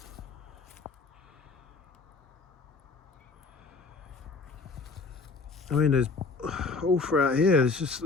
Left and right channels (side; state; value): right; quieter; 4.3 dB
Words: I mean, there's all throughout here, there's just